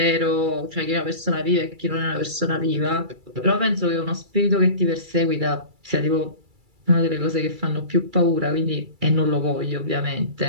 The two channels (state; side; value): late; left; 2.3 ms